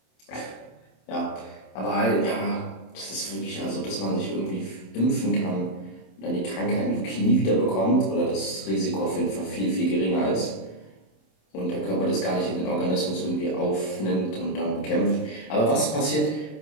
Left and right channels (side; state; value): right; late; 27 ms